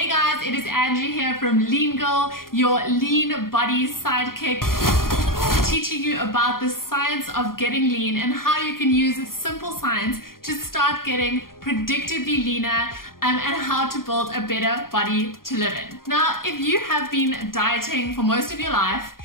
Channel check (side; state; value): right; late; 0.92 ms